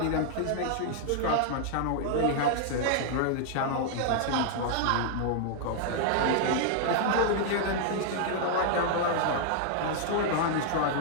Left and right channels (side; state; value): both; different; correlation -0.01